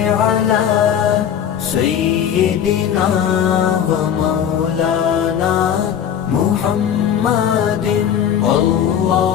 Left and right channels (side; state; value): right; quieter; 9.0 dB